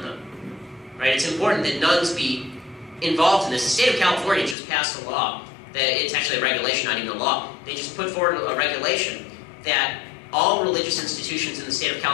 them. Right? It's important that nuns be involved in this. The state of California just passed a law that it's actually a regulation, not even a law. They just put forward a regulation that all religious institutions in the state of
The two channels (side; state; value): right; drops out; at 4.5 s